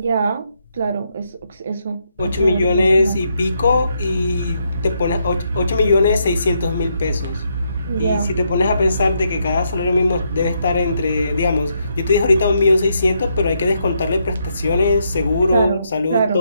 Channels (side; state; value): both; inverted; correlation -0.78